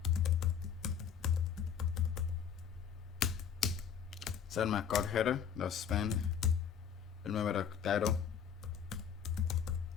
Set my code header, the span, remember the title,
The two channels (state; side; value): quieter; right; 7.8 dB